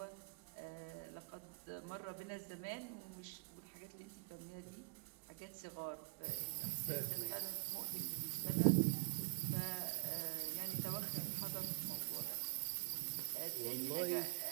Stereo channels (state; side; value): quieter; left; 34.3 dB